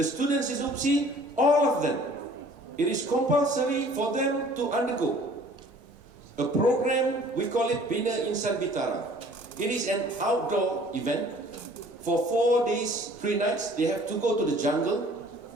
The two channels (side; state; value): both; normal; correlation 0.52